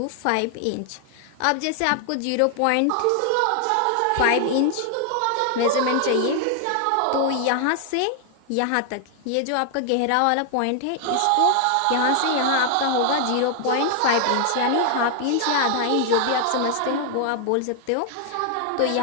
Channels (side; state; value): both; different; correlation 0.00